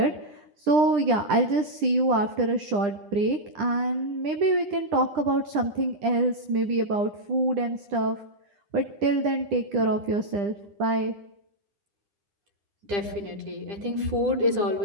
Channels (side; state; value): left; late; 9.9 ms